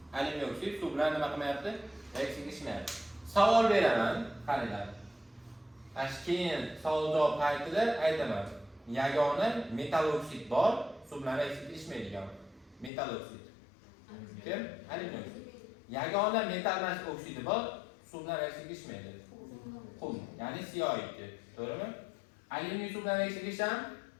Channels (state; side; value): drops out; right; at 12.9 s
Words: Alyuminiy oksid suv bilan nima qilmayapti? Reaksiyaga kirishmayapti. Savol beraman, qaranglar. Keyin savol javob paytida aytaman. Yagona metal oksid bor, suv bilan reaksiyaga kirishmaydigan. Metal oksid. Kim? Alyuminiy oksid. Yagona metal emas oksidi bor, suv bilan reaksiyaga kirishmaydi. Qum, ya'ni CO2. To'g'rimi? Alyuminiy suv bilan reaksiyaga kirisham?